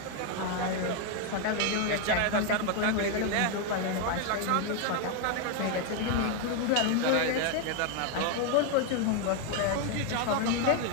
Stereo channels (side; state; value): both; different; correlation 0.01